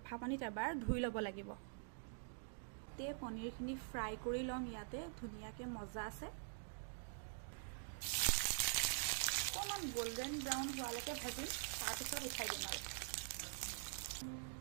পানীত এবাৰ ধুই ল'ব লাগিব। তে পনীৰখিনি ফ্ৰাই কৰি ল'ম। ইয়াতে ধুনীয়াকৈ মজা আছে। অকণমান গোল্ডেন ব্ৰাউন হোৱালৈকে ভাজিম, তাৰপিছত উঠাই দিম। আৰু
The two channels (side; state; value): left; silent; digital silence